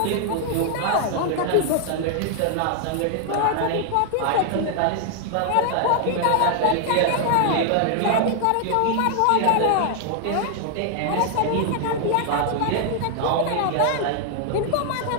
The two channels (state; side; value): different; both; correlation 0.00